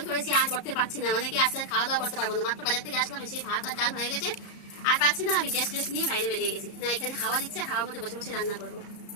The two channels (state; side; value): late; right; 34 ms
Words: করেছি, আর করতে পারছি না। মানে কি আজকে খাওয়া দাওয়া করতে পারবো না। মাত্র বাজার থেকে আসলাম, সেই ভাত আর ডাল হয়ে গেছে, আর পাচ্ছি না। আমি গ্যাস টেস্ট নিয়ে বাইরে বেরিয়ে গেছি। না এখানে হাওয়া দিচ্ছে, হাওয়ার মধ্যে বসে বসে রান্না করবো।